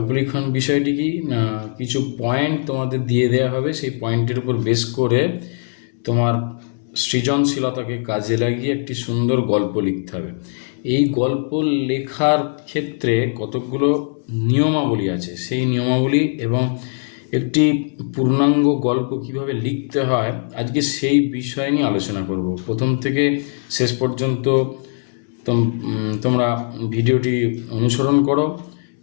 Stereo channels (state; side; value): silent; right; 66 dB below the other